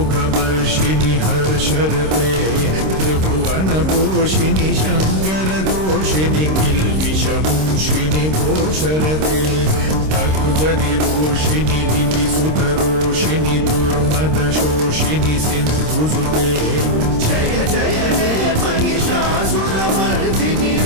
हर्षरते त्रिभुवनपोषिणि शङ्करदोषिणि किल्बिषमूषिणि भूषरते तनुजनिरोषिणि दितिसुतरोषिणि दुर्मदशोषिणि सिन्धुसुते जय जय हे महिषासुरमर्दिनि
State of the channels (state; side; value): late; left; 26 ms